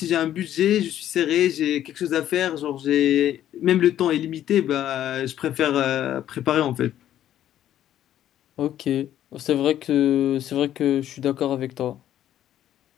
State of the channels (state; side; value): quieter; right; 11.6 dB